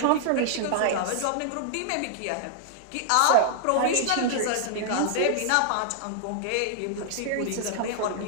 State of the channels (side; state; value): both; different; correlation -0.01